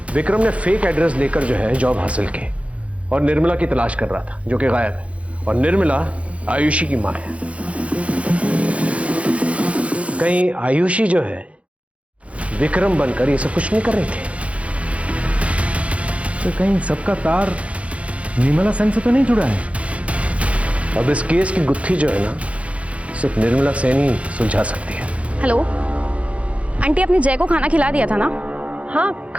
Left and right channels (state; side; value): late; left; 0.063 ms